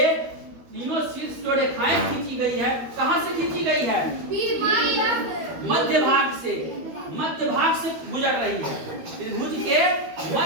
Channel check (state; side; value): late; left; 13 ms